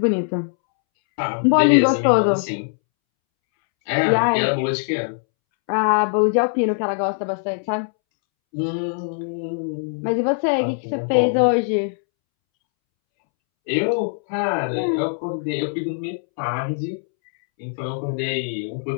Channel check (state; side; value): silent; right; 65 dB below the other